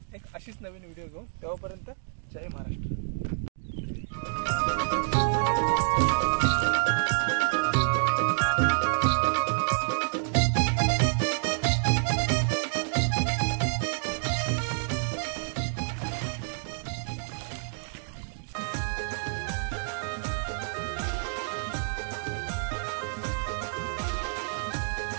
एक अशीच नवीन व्हिडिओ घेऊन. तेव्हापर्यंत जय महाराष्ट्र.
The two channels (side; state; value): left; silent; digital silence